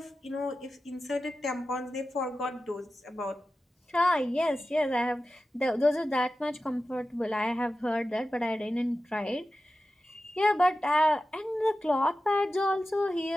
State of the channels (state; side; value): normal; both; correlation 0.94